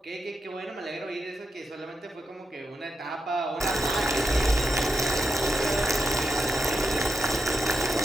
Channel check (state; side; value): normal; both; correlation 0.85